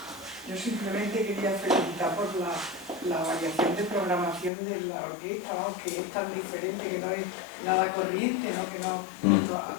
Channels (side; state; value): right; drops out; at 4.5 s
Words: Yo simplemente quería felicitar por la variación de programación de la orquesta, que es tan diferente, que no es nada corriente, ¿no? Que